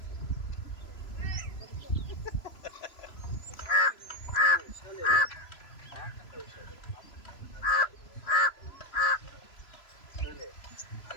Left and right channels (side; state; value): right; late; 3.0 ms